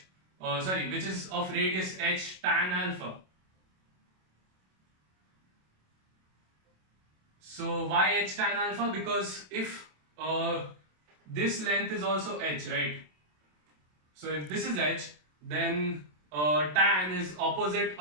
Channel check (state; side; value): late; left; 27 ms